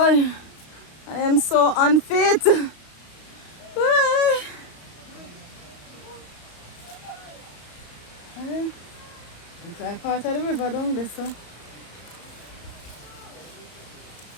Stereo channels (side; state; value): right; late; 34 ms